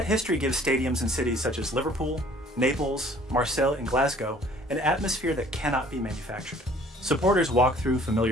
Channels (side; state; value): both; normal; correlation 0.54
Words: history gives stadiums in cities such as Liverpool, Naples, Marseille, and Glasgow an atmosphere that cannot be manufactured. Supporters walk through